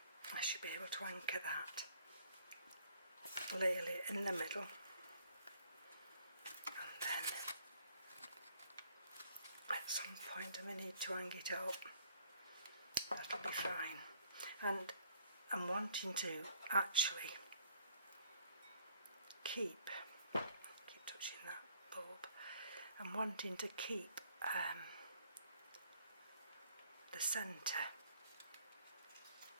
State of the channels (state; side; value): inverted; both; correlation -0.61